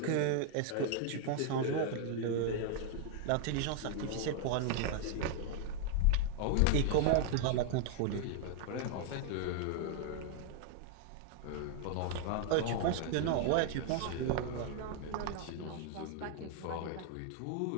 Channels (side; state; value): both; different; correlation 0.00